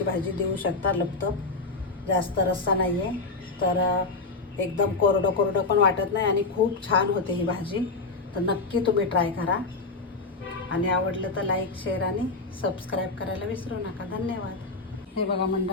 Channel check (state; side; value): quieter; right; 3.7 dB